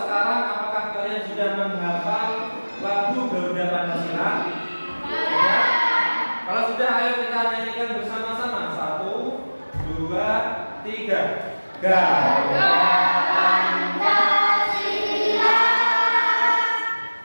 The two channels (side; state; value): both; inverted; correlation -1.00